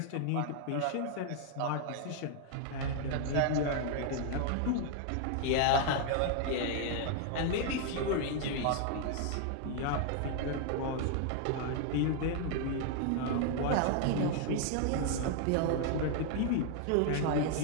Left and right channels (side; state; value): both; different; correlation 0.00